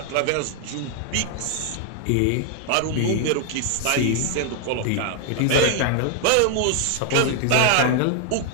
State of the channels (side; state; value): both; different; correlation 0.00